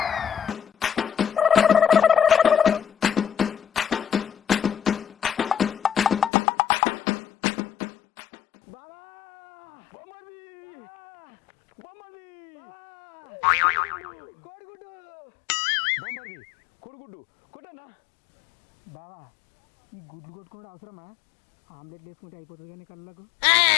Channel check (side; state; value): right; drops out; at 6.3 s